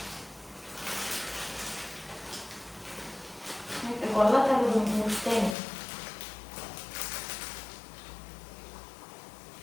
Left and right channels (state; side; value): drops out; right; at 5.6 s